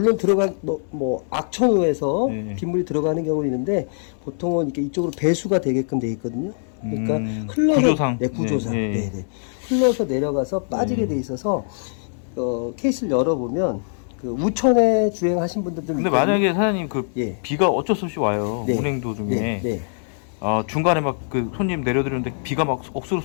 뭐 악천후에서 네. 빗물이 들어가는 경우는 있는데 보통은 이렇게 이쪽으로 배수가 되게끔 돼 있거든요. 그러니까 흘러서 구조상. 네, 구조상. 네, 네. 네네. 흘러서 내려가서 빠지게 돼 있어서 케이스를 열어보면 그 우천에 주행하신 분들도 근데 만약에 사장님 그 예. 비가 어쩔 수 없이 와요. 네. 운행 도중에. 네, 네. 중간에 막 그 손님 내려드리는데 비가 막 억수로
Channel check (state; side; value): silent; right; 62 dB below the other